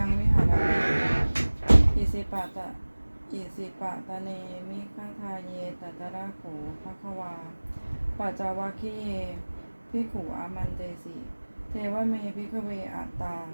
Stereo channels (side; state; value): both; inverted; correlation -1.00